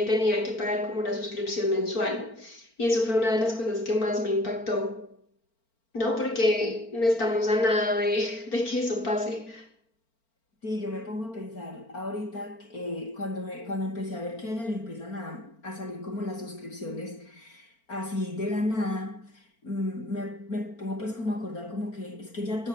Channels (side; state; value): right; late; 4.4 ms